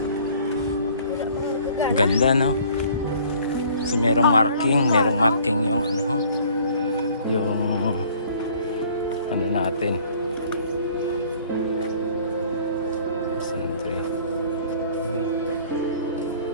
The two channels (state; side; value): inverted; both; correlation -0.54